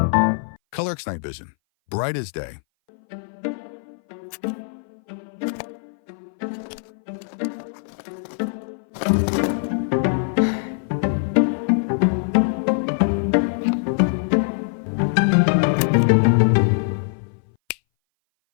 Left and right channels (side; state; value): right; silent; 60 dB below the other